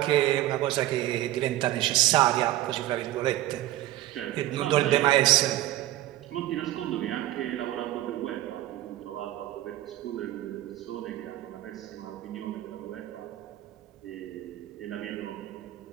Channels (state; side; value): quieter; left; 14.9 dB